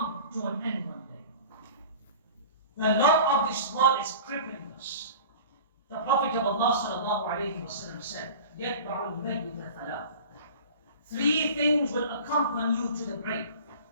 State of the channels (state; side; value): inverted; both; correlation -0.40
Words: to an end one day. The love of this world is crippling us. The Prophet of Allah sallallahu alayhi wa sallam said, يَتْبَعُ الْمَيِّتَ ثَلَاثٍ. Three things will accompany you to the grave.